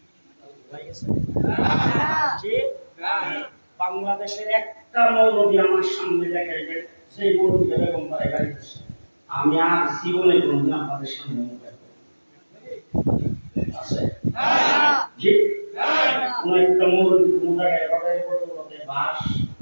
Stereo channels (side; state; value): both; inverted; correlation -1.00